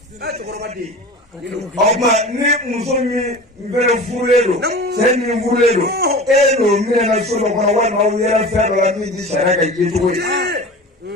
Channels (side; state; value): both; normal; correlation 0.35